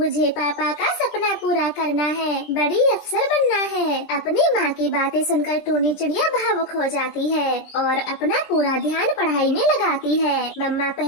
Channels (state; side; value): late; right; 20 ms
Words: पापा का सपना पूरा करना है, बड़ी अफसर बनना है। अपनी माँ की बातें सुनकर टूनी चिड़िया भावुक हो जाती है और अपना पूरा ध्यान पढ़ाई में लगाती है। मम्मा